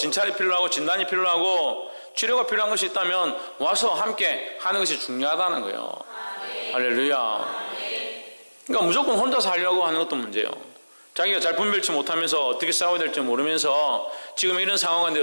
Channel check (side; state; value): both; inverted; correlation -1.00